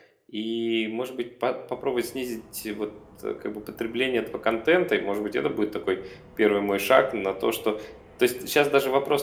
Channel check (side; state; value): both; identical; correlation 1.00